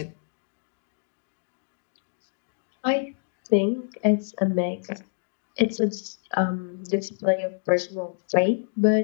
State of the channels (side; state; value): right; silent; digital silence